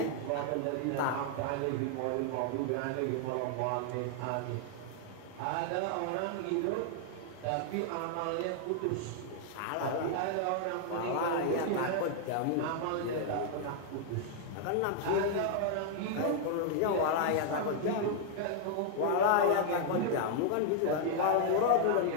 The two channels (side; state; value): both; different; correlation 0.00